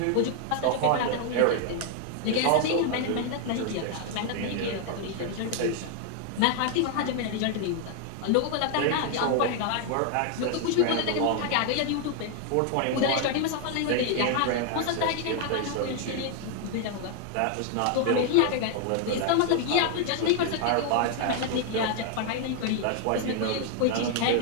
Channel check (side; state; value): both; different; correlation 0.00